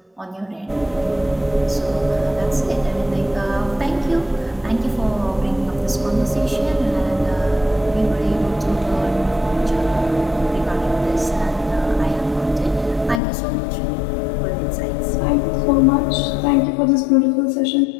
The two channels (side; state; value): right; drops out; at 13.2 s